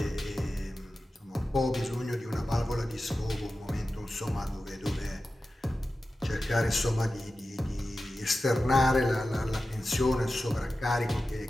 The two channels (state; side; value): normal; both; correlation 0.93